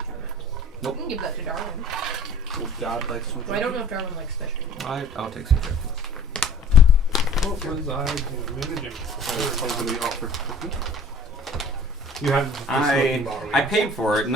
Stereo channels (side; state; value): both; normal; correlation 0.47